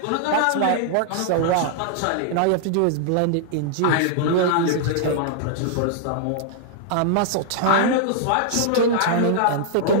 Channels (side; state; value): both; different; correlation -0.01